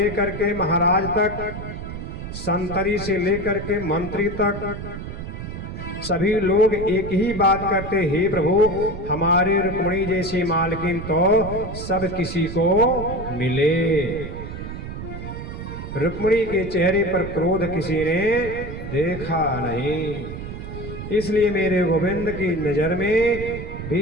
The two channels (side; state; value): right; noise; rumble, 8 dB below the sound